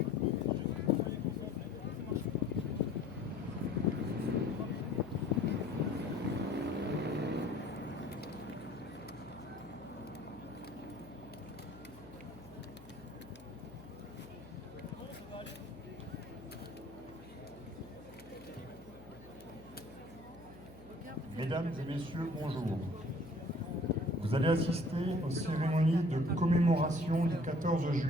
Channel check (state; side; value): noise; left; hum, 20 dB below the sound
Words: Mesdames et messieurs, bonjour. Vous allez assister aux cérémonies de commémoration du 14